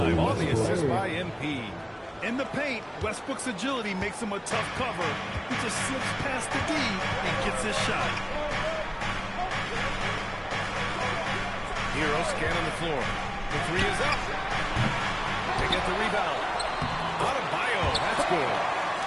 on the assist by MP. In the paint, Westbrook's agility makes him a tough cover. He just slips past the D and gets his shot. Hero scanning the floor. The 3 is up. They get the rebound. Adebayo, that's good.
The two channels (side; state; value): both; identical; correlation 1.00